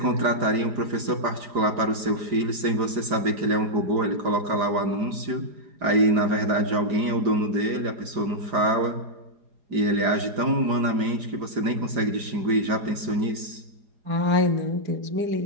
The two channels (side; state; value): left; late; 5.0 ms